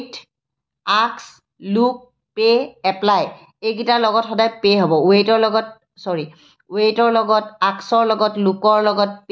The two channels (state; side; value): identical; both; correlation 1.00